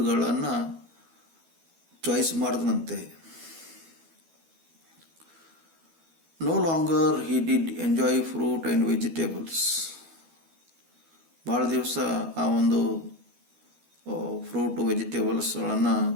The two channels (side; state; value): left; late; 12 ms